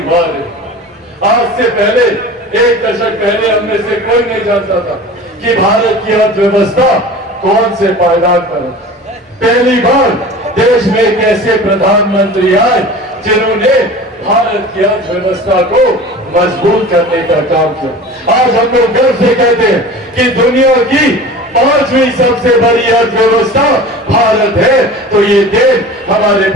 आज से पहले, एक दशक पहले हम में से कोई नहीं जानता था कि भारत की अर्थव्यवस्था कौन से पायदान पर है। पहली बार देश में एक ऐसे प्रधानमंत्री आए जिन्होंने भारत की अर्थव्यवस्था को मजबूत करने का काम किया। आज हम लोग गर्व से कहते हैं कि दुनिया की 5वीं सबसे बड़ी अर्थव्यवस्था भारत है, तो ये देन हमारे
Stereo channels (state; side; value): normal; both; correlation 0.38